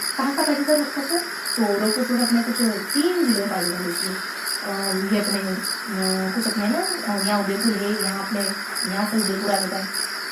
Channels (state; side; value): identical; both; correlation 1.00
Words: कहाँ का पाए जाता है रोक फॉस्फोट, तो रोक फॉस्फोट अपने कुछ 3 जिलों में पाए जाते हैं। इसलिए ये अपने कुछ अपने ना यहाँ उदयपुर है, यहाँ अपने यहाँ से उदयपुर आ जाता है,